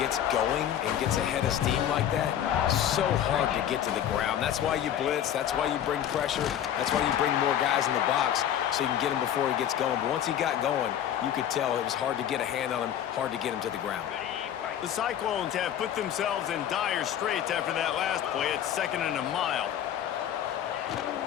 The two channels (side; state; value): right; quieter; 10.3 dB